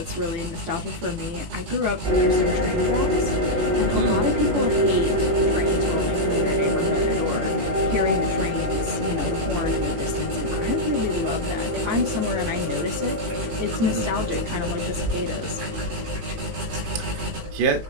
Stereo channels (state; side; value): late; left; 18 ms